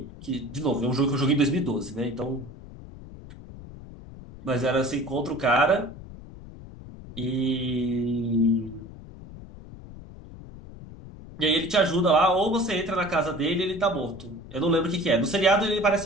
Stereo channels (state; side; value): noise; left; rumble, 16 dB below the sound